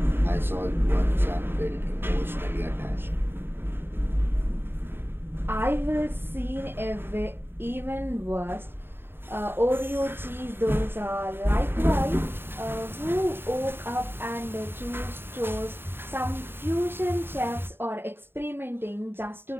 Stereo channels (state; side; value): late; left; 0.11 ms